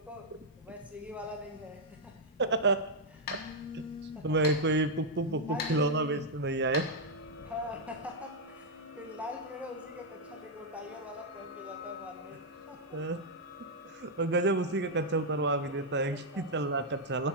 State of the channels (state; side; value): normal; both; correlation -0.04